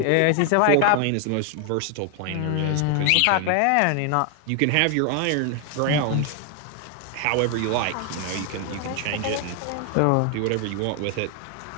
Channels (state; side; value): different; both; correlation 0.00